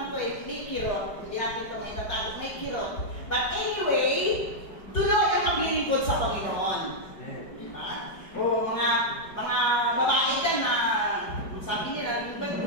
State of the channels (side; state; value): right; late; 4.9 ms